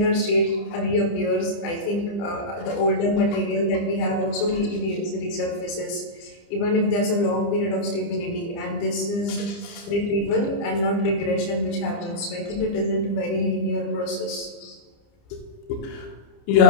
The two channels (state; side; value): late; right; 30 ms